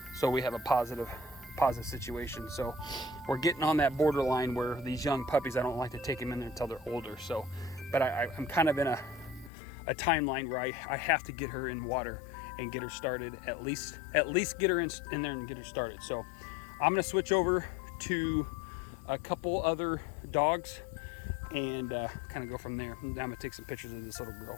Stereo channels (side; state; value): right; drops out; at 9.5 s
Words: so we have a positive situation. So we're getting on that borderline where these young puppies, I don't like to take them in there until they're older. So, but I'm kind of in a timeline where I have to get her in water and get her started, at least get her in there and get her started. So I'm gonna switch over to a couple other dogs and kind of go from there. I'm gonna take some pictures of this little